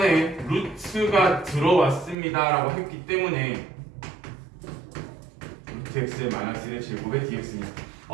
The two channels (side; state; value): left; drops out; at 2.1 s